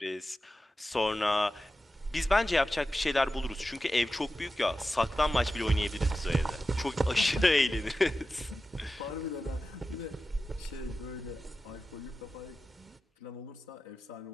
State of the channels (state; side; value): normal; both; correlation 0.93